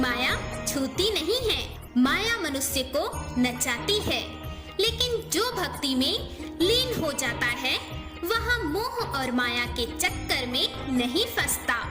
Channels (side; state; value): both; identical; correlation 1.00